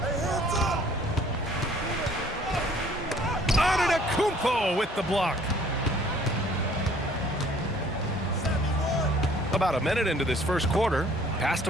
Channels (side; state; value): both; normal; correlation 0.56